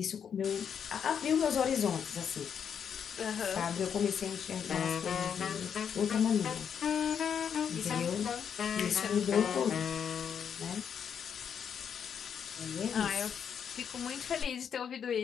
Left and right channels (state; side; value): quieter; right; 7.7 dB